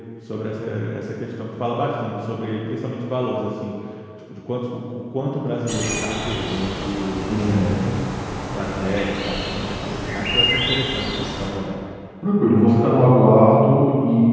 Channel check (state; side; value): identical; both; correlation 1.00